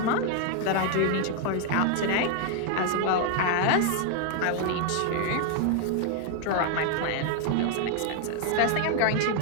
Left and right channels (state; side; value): different; both; correlation 0.00